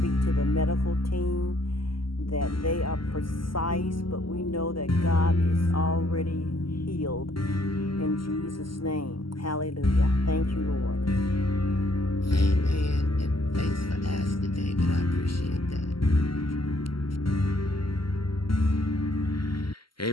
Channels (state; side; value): late; right; 0.74 ms